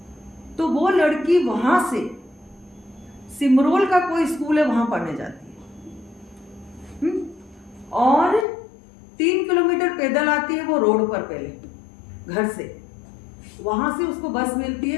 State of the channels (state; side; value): drops out; right; at 8.5 s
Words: तो वो लड़की वहां से सिमरोल का कोई स्कूल है वहां पढ़ने जाती है, और 3 किलोमीटर पैदल आती है वो रोड पर, पहले घर से, वहां से उसको बस मिलती